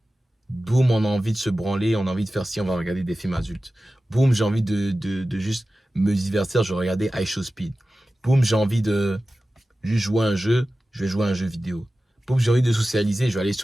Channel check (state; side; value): normal; both; correlation 0.95